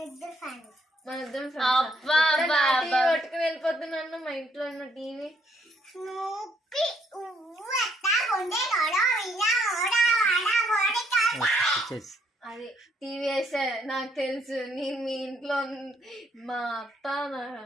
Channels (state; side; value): normal; both; correlation 0.69